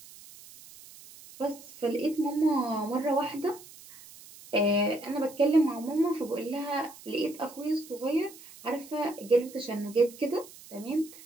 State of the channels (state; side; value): noise; right; hiss, 19 dB below the sound